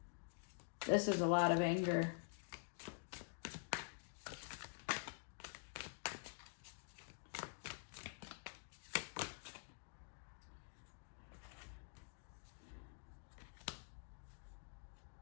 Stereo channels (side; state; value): right; silent; digital silence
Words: This is a lot of anger.